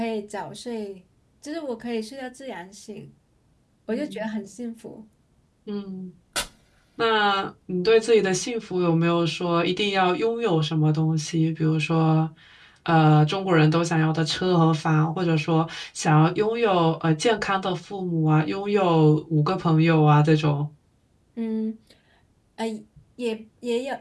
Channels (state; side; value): identical; both; correlation 1.00